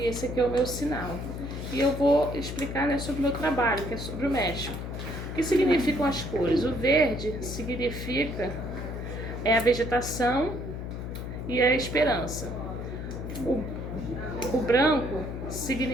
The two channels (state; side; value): noise; left; hum, 6 dB below the sound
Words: esse aqui é o meu sinal. E eu vou explicar, né, sobre o meu trabalho, que é sobre o México. O que significam as cores? O verde significa a vegetação e a esperança. O branco